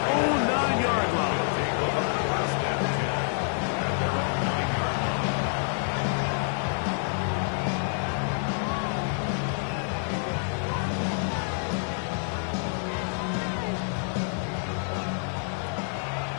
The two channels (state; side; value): silent; right; 60 dB below the other